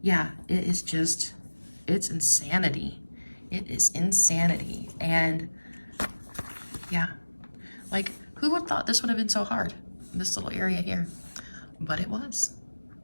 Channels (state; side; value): inverted; both; correlation -1.00